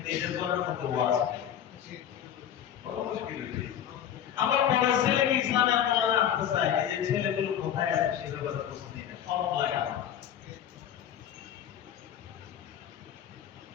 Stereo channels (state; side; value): quieter; right; 9.8 dB